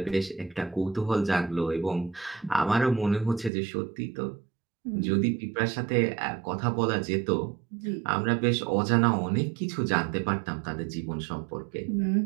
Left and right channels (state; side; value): drops out; left; at 3.5 s